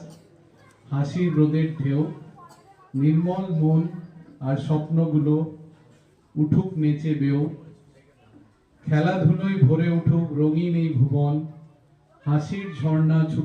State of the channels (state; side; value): identical; both; correlation 1.00